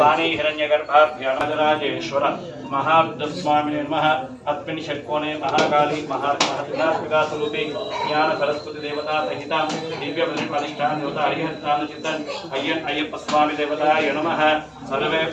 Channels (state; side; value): identical; both; correlation 1.00